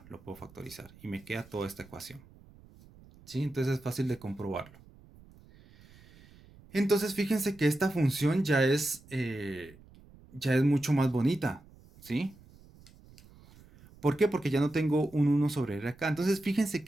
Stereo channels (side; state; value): right; noise; rumble, 24 dB below the sound